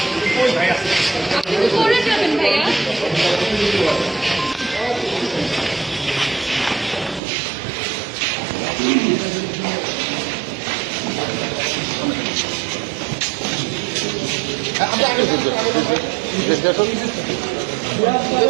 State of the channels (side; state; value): left; drops out; at 7.2 s